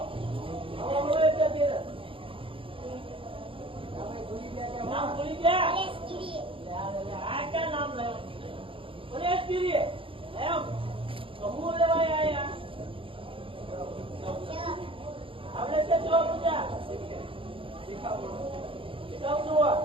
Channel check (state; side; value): late; left; 0.26 ms